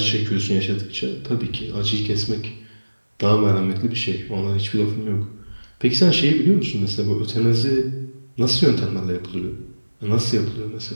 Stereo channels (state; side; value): inverted; both; correlation -1.00